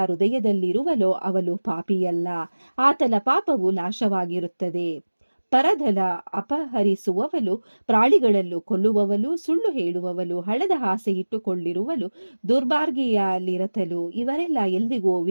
ಹೃದಯದಲ್ಲಿರುವನೋ ಅವನು ಪಾಪಿಯಲ್ಲ. ಆತನ ಪಾಪವು ನಾಶವಾಗಿರುತ್ತದೆ. ಪರಧನ ಅಪಹರಿಸುವವನು, ಪ್ರಾಣಿಗಳನ್ನು ಕೊಲ್ಲುವವನು, ಸುಳ್ಳು ಹೇಳುವವನು, ಹಣದ ಆಸೆ ಇಟ್ಟುಕೊಂಡಿರುವನು, ದುರ್ಮಾರ್ಗಿಯಲ್ಲಿರತನು ಇವರೆಲ್ಲ ಎಂದಿಗೂ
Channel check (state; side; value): inverted; both; correlation -1.00